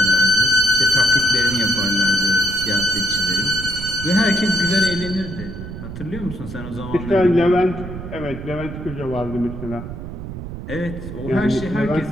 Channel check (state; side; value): noise; right; rumble, 9 dB below the sound